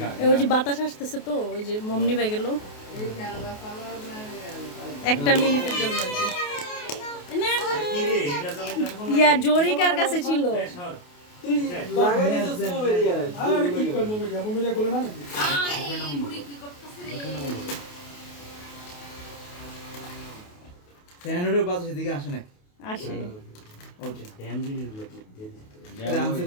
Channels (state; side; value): late; right; 28 ms